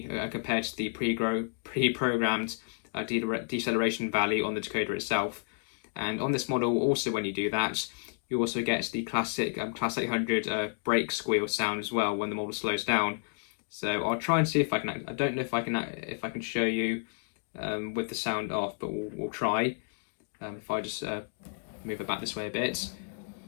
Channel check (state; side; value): silent; right; digital silence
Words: compared to the pre-programmed deceleration value on the decoder itself. And on this model, also when you do that, you also get the classic Class 800 brake squeal sound as well when the model slows down. So I'll try and see if I can. I don't know if I can show you with the sound off, but we'll try. If I just move it back this way a bit,